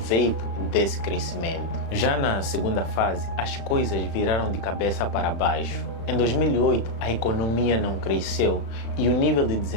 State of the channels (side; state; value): right; late; 36 ms